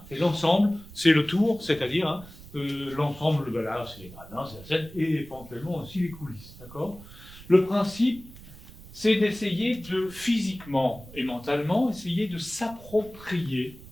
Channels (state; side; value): noise; right; rumble, 18 dB below the sound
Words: l'ensemble, c'est le tour, c'est-à-dire l'ensemble, voilà, c'est les gradins, c'est la scène, et éventuellement aussi les coulisses, d'accord? Le principe, c'est d'essayer de, physiquement et mentalement, essayer de s'approprier